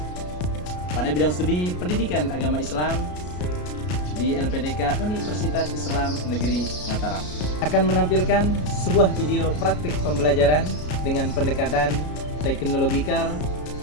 pada bidang studi Pendidikan Agama Islam di LPDK Universitas Islam Negeri Mataram. Akan menampilkan sebuah video praktik pembelajaran dengan pendekatan teknologikal,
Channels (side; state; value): right; late; 33 ms